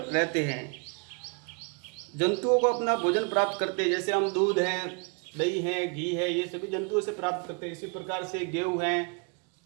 हैं, जंतुओं को अपना भोजन प्राप्त करते हैं। जैसे हम दूध है, दही है, घी है, ये सभी जंतुओं से प्राप्त करते हैं। इसी प्रकार से गेहूं है,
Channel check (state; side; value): quieter; left; 34.4 dB